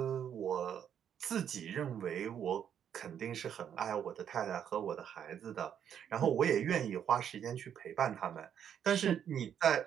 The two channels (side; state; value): left; quieter; 8.9 dB